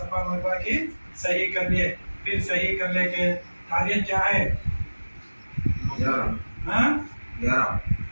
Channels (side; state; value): both; inverted; correlation -1.00